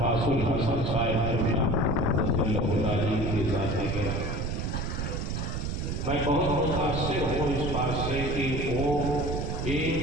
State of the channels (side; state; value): right; noise; rumble, 2 dB below the sound